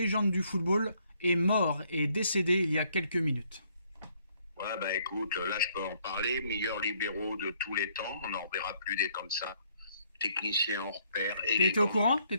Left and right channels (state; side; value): inverted; both; correlation -0.67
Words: du football, est mort et décédé il y a quelques minutes. Ouais, écoute, là je peux en parler. Meilleur libéraux de tous les temps, on n'en verra plus des comme ça. Technicien hors pair. T'étais au courant?